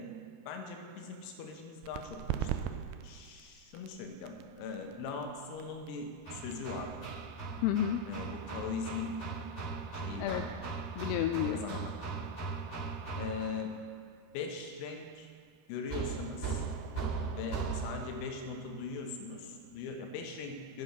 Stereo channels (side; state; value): right; late; 13 ms